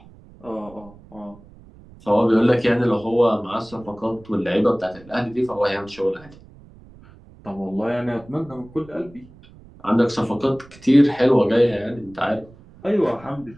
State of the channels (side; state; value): right; noise; rumble, 23 dB below the sound